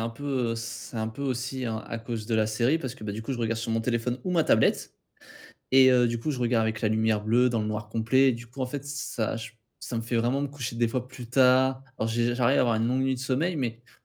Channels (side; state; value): both; identical; correlation 1.00